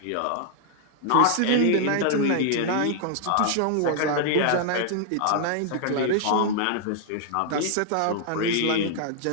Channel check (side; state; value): both; different; correlation -0.01